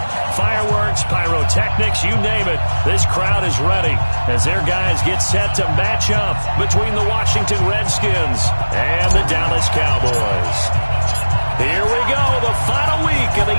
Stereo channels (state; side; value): inverted; both; correlation -1.00